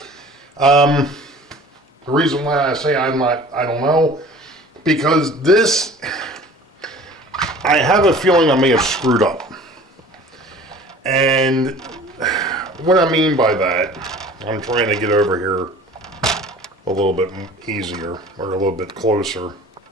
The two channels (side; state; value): both; normal; correlation 0.45